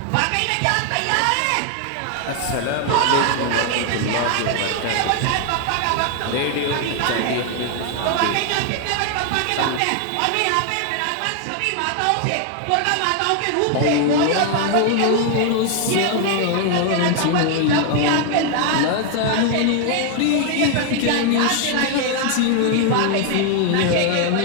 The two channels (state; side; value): different; both; correlation 0.00